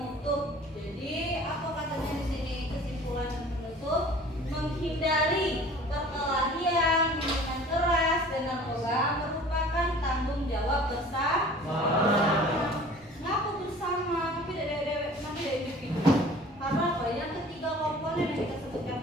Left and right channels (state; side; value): normal; both; correlation 0.47